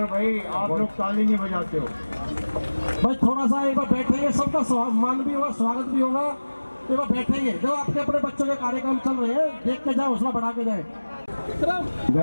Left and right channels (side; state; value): both; inverted; correlation -1.00